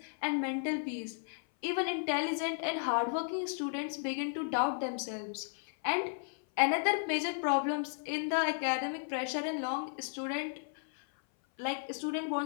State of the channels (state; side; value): silent; right; 55 dB below the other